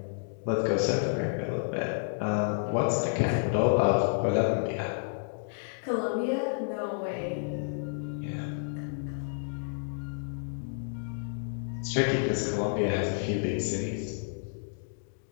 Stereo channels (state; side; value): silent; right; digital silence